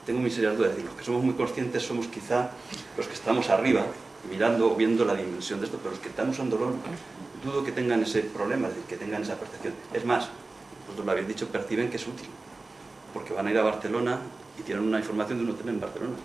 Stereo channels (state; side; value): quieter; left; 3.4 dB